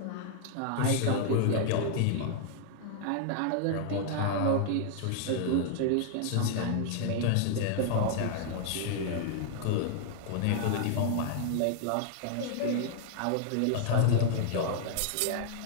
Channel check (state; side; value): different; both; correlation -0.01